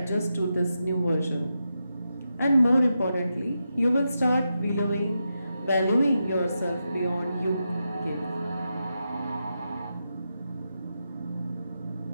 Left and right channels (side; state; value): both; inverted; correlation -0.87